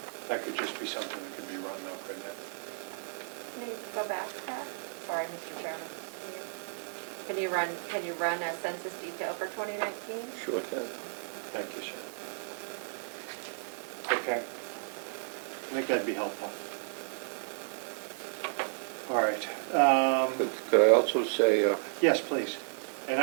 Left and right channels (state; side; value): silent; left; digital silence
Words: That could just be something that could be run though. good now. Can you go back, Pat? Sorry, Mr. Chairman. Can you run a census detail for 2019? Sure can. Thank you, sir. Okay. I think that'd be helpful. All right. Could I also say, Yes, please. And